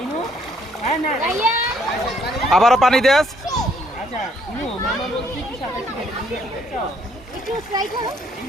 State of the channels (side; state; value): both; normal; correlation 0.67